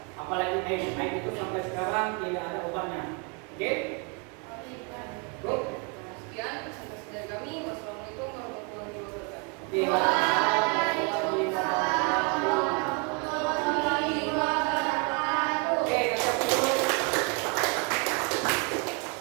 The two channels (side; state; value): left; quieter; 33.0 dB